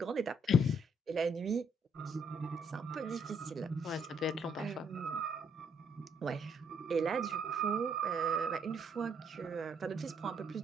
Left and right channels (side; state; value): both; normal; correlation 0.69